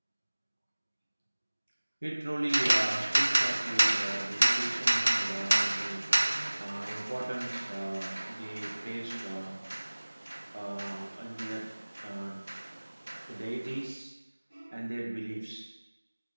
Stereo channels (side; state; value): both; inverted; correlation -1.00